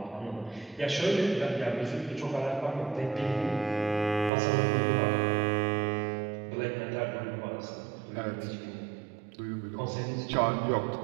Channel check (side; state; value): left; drops out; at 4.3 s